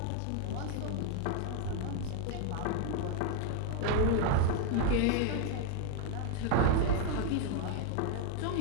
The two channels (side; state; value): both; different; correlation 0.00